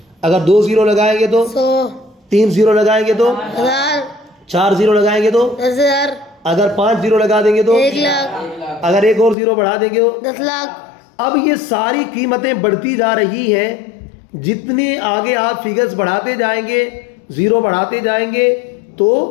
اگر 2 0 لگائیں گے تو 100. 3 0 لگائیں گے تو 1000. 4 0 لگائیں گے تو 10,000. اگر 5 0 لگا دیں گے تو 1,00,000. اگر ایک اور 0 بڑھا دیں گے تو 10,00,000. اب یہ ساری قیمتیں بڑھتی جا رہی ہیں. جتنے آگے آپ فگرز بڑھاتے جائیں گے, 0 بڑھاتے جائیں گے تو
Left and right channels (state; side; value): drops out; right; at 9.3 s